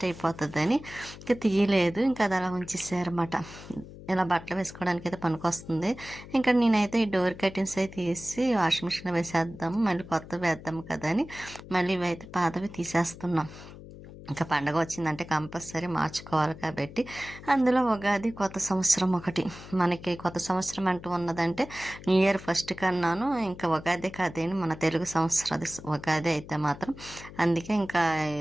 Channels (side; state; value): left; noise; hum, 16 dB below the sound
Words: అయిపోతుందని ఇంకా తీయలేదు. ఇంకా అది అలా ఉంచేసారన్నమాట. ఇలా బట్టలు వేసుకోవడానికి అయితే పనికొస్తుంది. ఇంకా నేనైతే ఈ డోర్ కర్టెన్స్ అయితే తీసి వాషింగ్ మిషన్లో వేసేద్దాము, మళ్ళీ కొత్తవి వేద్దాము కదా అని మళ్ళీ ఇవైతే పాతవి తీసేస్తున్నాం. ఇంకా పండగ వచ్చిందంటే కంపల్సరీ మార్చుకోవాలి కాబట్టి అందులో ఉగాది కొత్త సంవత్సరం ఒకటి. మనకి కొత్త సంవత్సరం అంటూ ఉన్నదంటే న్యూ ఇయర్ ఫస్ట్ కన్నాను. ఇంకా ఉగాది కాదేని మన తెలుగు సంవత్సరం అది ఉగాది అయితే మాత్రం. అందుకే ఇంకా